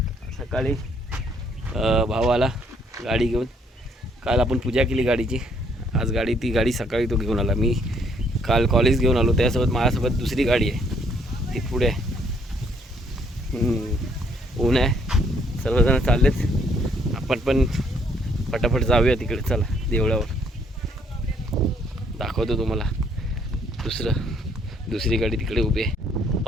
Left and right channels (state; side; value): normal; both; correlation 0.66